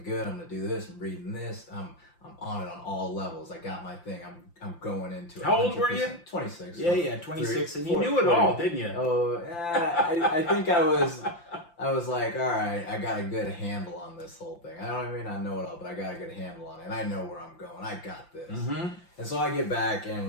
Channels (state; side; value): late; right; 5.8 ms